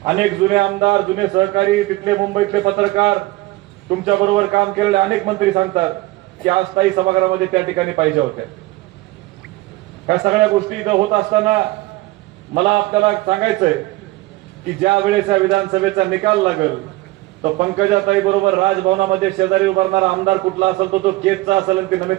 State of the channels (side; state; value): left; quieter; 19.7 dB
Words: अनेक जुने आमदार, जुने सहकारी, तिथले मुंबईतले पत्रकार, तुमच्या बरोबर काम केलेले अनेक मंत्री सांगतात की आज ताई सभागृहामध्ये त्या ठिकाणी पाहिजे होत्या. ह्या सगळ्या गोष्टी इथं होत असताना मला आपल्याला सांगायचंय की ज्या वेळेस या विधानसभेचा निकाल लागेल तर पंकजाताई बरोबर राजभवनामध्ये शेजारी उभारणारा आमदार कुठला असेल तो केजचा असेल आणि ती